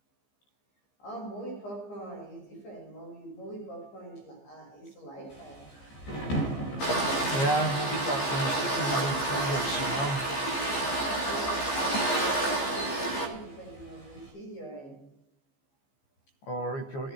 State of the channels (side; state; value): right; late; 15 ms